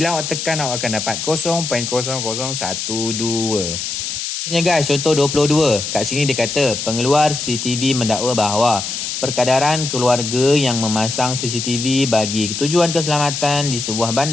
awak tekan, awak akan dapat 0.0012. Guys, contoh 22. Kat sini dia kata pengeluar CCTV mendakwa bahawa perkadaran keluarga yang memasang CCTV bagi tujuan keselamatan di sebuah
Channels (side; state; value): left; noise; hiss, 4 dB below the sound